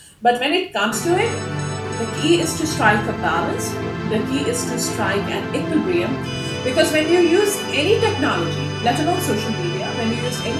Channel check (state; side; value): identical; both; correlation 1.00